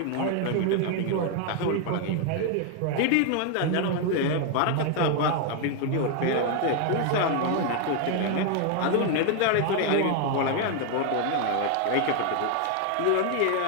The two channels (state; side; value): different; both; correlation 0.01